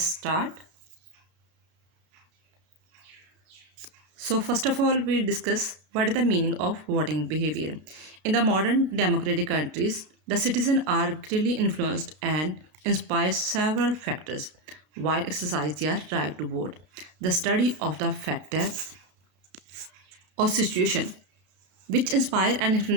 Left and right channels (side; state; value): left; late; 33 ms